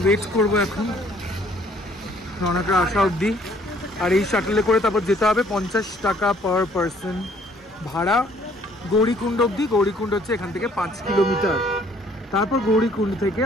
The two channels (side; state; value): both; normal; correlation 0.61